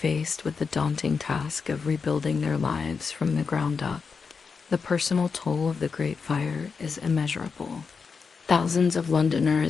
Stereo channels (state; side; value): quieter; right; 5.3 dB